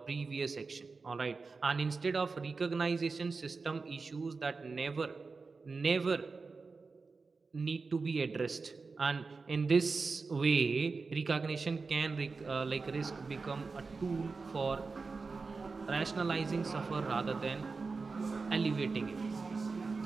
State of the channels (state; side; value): quieter; left; 4.3 dB